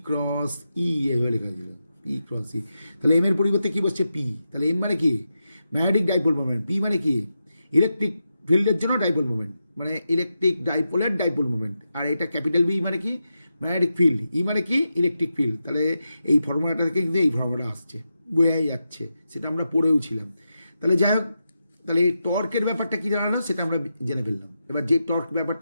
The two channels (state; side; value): inverted; both; correlation -0.88